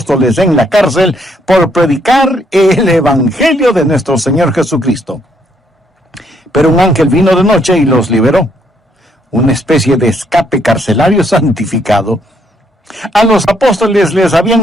en la cárcel por predicar el evangelio de nuestro Señor Jesucristo. Pero un ángel vino de noche y los liberó. Una especie de escape carcelario santificado. A los apóstoles les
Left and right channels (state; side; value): normal; both; correlation 0.71